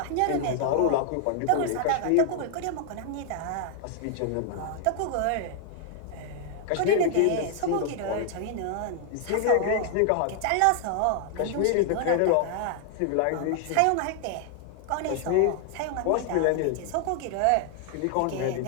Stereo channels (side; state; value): both; different; correlation 0.00